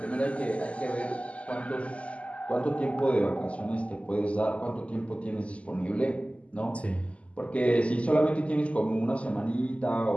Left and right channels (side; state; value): right; late; 0.062 ms